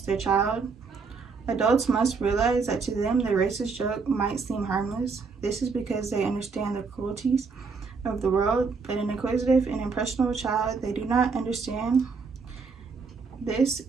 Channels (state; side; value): quieter; left; 4.9 dB